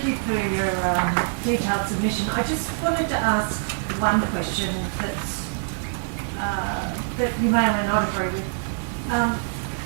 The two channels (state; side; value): silent; left; digital silence